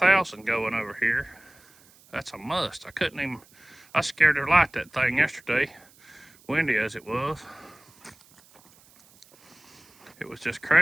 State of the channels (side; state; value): right; noise; hiss, 28 dB below the sound